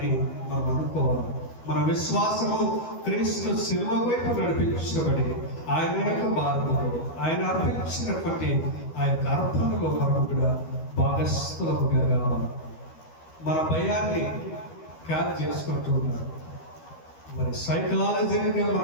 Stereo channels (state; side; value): late; right; 12 ms